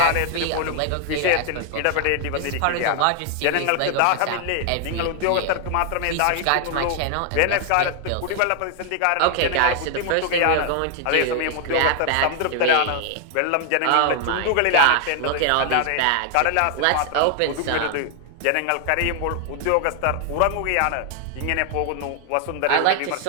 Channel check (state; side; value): different; both; correlation 0.00